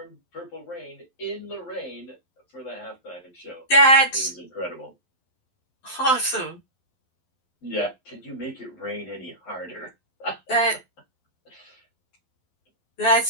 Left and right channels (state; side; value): late; right; 12 ms